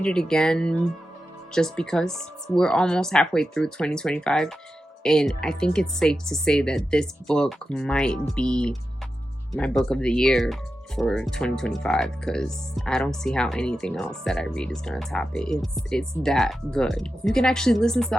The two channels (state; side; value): normal; both; correlation 0.91